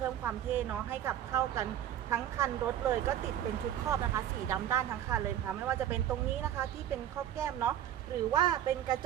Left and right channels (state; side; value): quieter; left; 11.0 dB